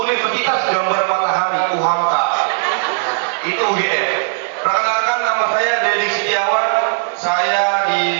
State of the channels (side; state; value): left; silent; digital silence